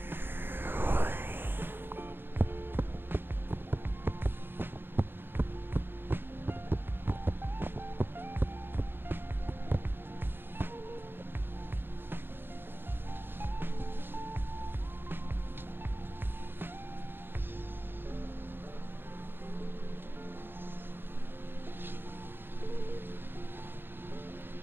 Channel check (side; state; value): left; late; 0.10 ms